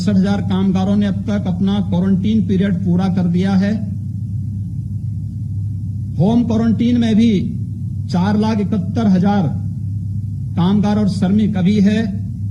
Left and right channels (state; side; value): identical; both; correlation 1.00